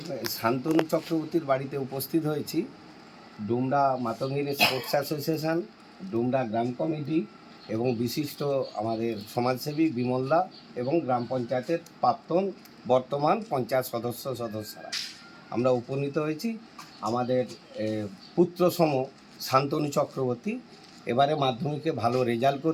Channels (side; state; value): both; identical; correlation 1.00